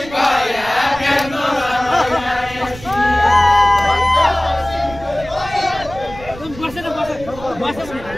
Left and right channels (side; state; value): right; noise; rumble, 16 dB below the sound